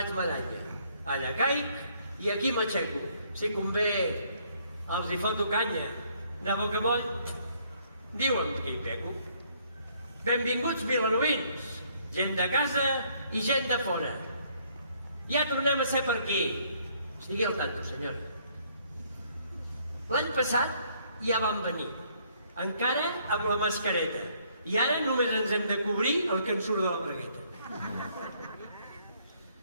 medalla. Allà caic i aquí m'aixeco. Si convé, els hi foto canya. De bocamoll, diuen que hi pego. Benvinguts vilanovins, gent de casa i gent de fora. Ja tornem a ser per aquí. Estigui al tanto, senyora. L'any passat ja vam venir, encara amb la mascareta, i ara només ens hem de cobrir el que ens surt de la bragueta.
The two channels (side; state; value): both; inverted; correlation -0.66